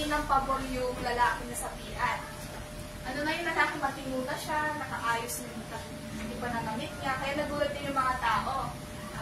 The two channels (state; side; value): identical; both; correlation 1.00